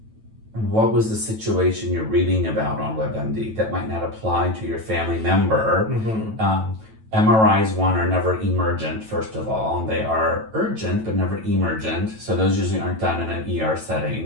what was the situation you're reading about on WebMD that might not apply to your family member? Mm-hmm. MRIs, are never emergent, first of all. They are urgent, but never emergent. So those usually aren't done in an ER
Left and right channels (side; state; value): left; late; 9.1 ms